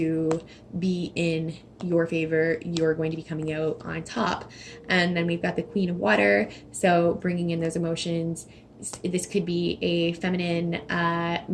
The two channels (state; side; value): identical; both; correlation 1.00